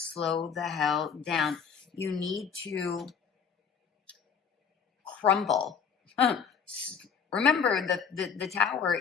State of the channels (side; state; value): right; quieter; 6.7 dB